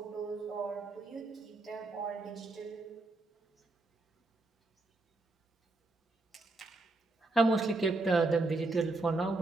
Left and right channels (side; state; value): left; quieter; 3.1 dB